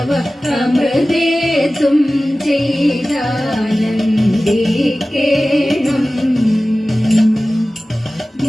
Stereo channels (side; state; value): both; normal; correlation 0.96